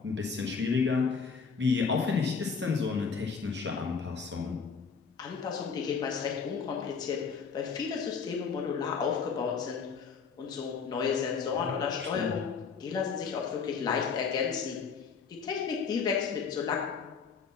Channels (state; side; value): quieter; right; 5.7 dB